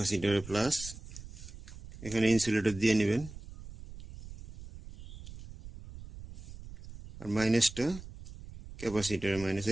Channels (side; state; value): right; noise; rumble, 14 dB below the sound